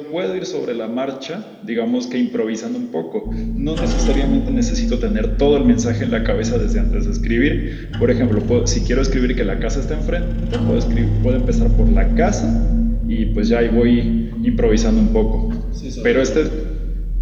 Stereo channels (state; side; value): identical; both; correlation 1.00